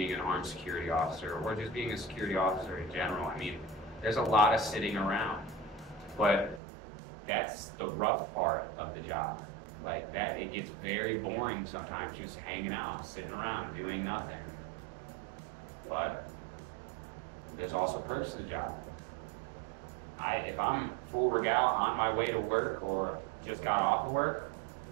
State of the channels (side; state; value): left; drops out; at 6.6 s